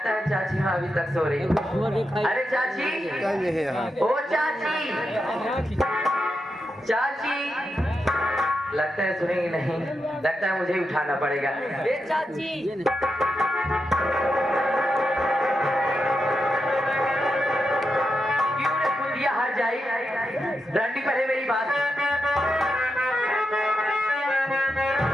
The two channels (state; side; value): normal; both; correlation 0.87